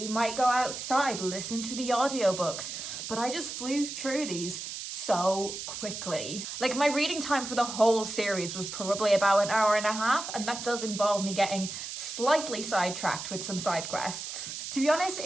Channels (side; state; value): right; noise; hiss, 7 dB below the sound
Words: might go outside, listen to the audiobooks, but I just flew through these so quickly. Like, my reading time for the whole series was probably about an hour and a half, and that does involve me getting slightly sidetracked with some side quests. To be honest,